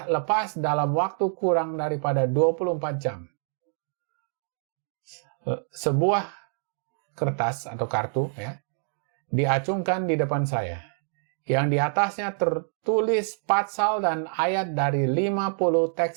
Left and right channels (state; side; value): silent; left; 60 dB below the other